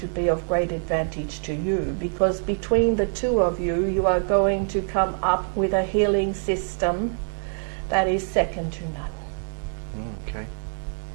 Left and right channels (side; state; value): left; silent; 62 dB below the other